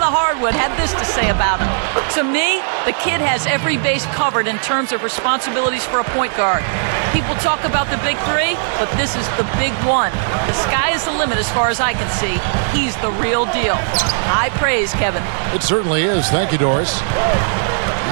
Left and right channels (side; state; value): left; silent; digital silence